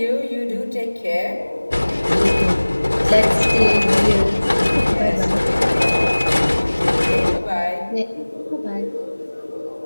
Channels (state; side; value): inverted; both; correlation -1.00